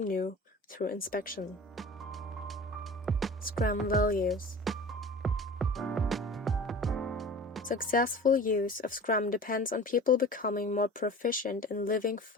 new through inspection. Scrum values. Successful use of Scrum depends on people becoming more proficient in living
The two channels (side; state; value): both; normal; correlation 0.39